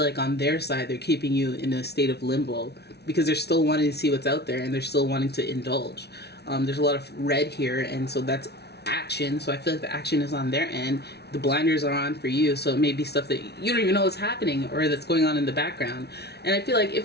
like on their side, they're keeping you in a state of limbo because they're still wanting to see what's out there and they're still wanting to indulge. There's a lot of red here, and so that's action. So I feel like the action is on their end. The blinders are on for you, so it may be stuff that you don't even know is happening or that's going on in the background. And I feel like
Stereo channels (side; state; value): right; late; 0.49 ms